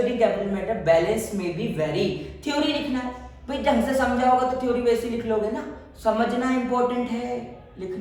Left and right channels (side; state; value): both; identical; correlation 1.00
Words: कैपिटल मेथड बैलेंस में भी वेरी। थ्योरी लिखना है भाई, ढंग से समझा होगा तो थ्योरी वैसे लिख लोगे ना, समझना इंपॉर्टेंट है,